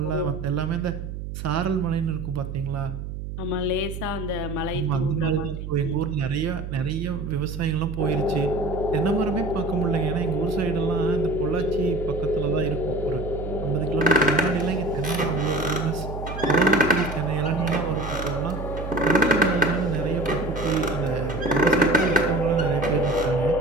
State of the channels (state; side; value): noise; right; hum, 7 dB below the sound